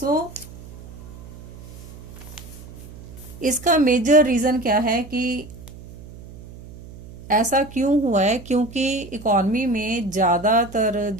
इसका मेजर रीजन क्या है कि ऐसा क्यों हुआ है? क्योंकि इकॉनमी में ज़्यादातर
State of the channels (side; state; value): right; noise; hum, 16 dB below the sound